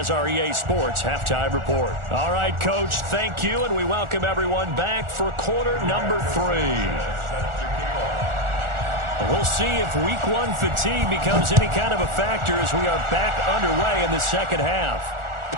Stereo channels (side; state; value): left; late; 1.4 ms